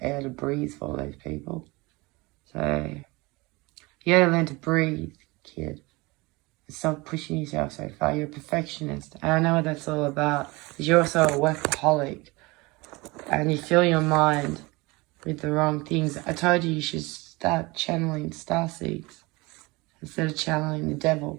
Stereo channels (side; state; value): left; quieter; 23.9 dB